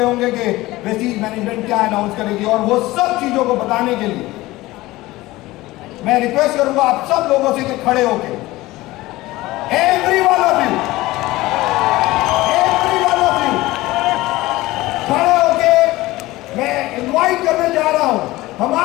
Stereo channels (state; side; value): quieter; right; 18.7 dB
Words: होंगे कि वेस्टीज मैनेजमेंट क्या अनाउंस करेगी। और वो सब चीजों को बताने के लिए मैं रिक्वेस्ट करूंगा आप सब लोगों से कि खड़े होके, एवरी वन ऑफ यू खड़े होके मैं इनवाइट करने जा रहा हूं